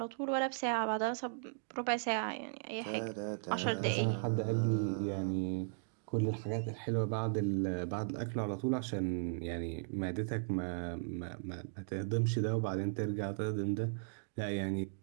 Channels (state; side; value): silent; left; digital silence